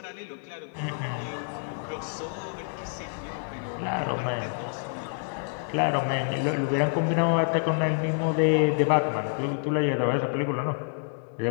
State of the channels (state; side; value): silent; right; digital silence